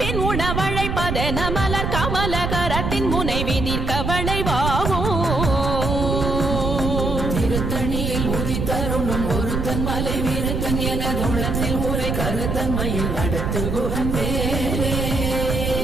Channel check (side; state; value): right; noise; rumble, 1 dB below the sound